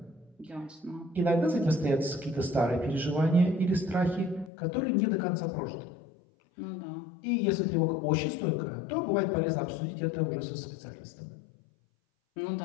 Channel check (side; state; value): right; drops out; at 4.5 s